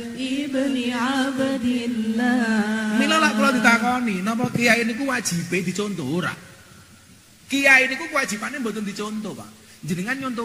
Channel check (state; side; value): identical; both; correlation 1.00